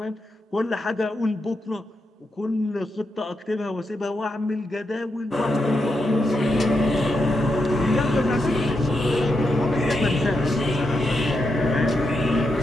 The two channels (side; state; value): both; normal; correlation 0.84